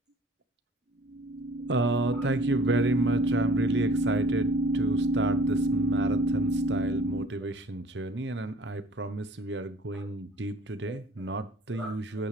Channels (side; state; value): both; normal; correlation 0.52